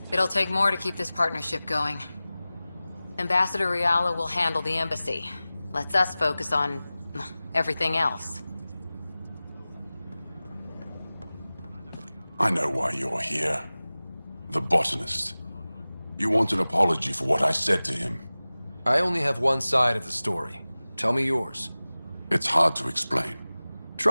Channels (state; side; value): inverted; both; correlation -0.98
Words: It'll take more to keep this partnership going. Ambassador Riala will handle the embassy. Lets us focus on everything else. I know why you're here. The botanist. You want an apology for what I said to him. I only have one side of the story. Tell me yours. It's hard to explain.